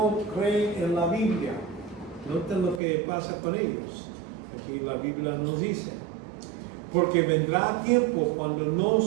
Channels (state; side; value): drops out; left; at 2.8 s